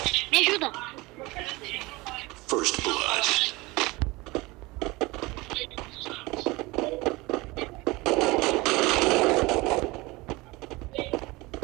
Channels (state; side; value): quieter; left; 22.6 dB